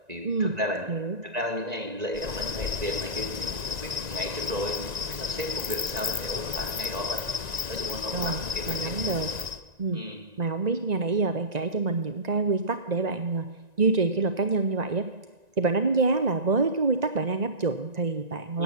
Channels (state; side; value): late; left; 1.9 ms